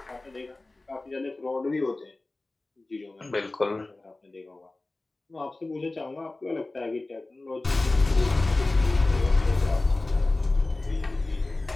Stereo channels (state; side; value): quieter; right; 3.0 dB